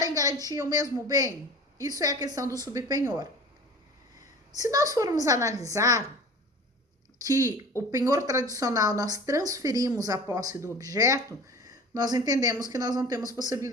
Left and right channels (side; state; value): both; normal; correlation 0.40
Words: em garantia o mesmo bem? Isso é a questão do subpenhor. Se nós formos analisar que o penhor tradicional nós transferimos a posse do objeto, nós entendemos que nós não temos